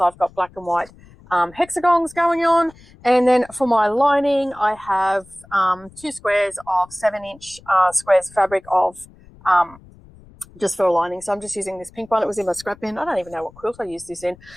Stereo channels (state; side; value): noise; left; rumble, 24 dB below the sound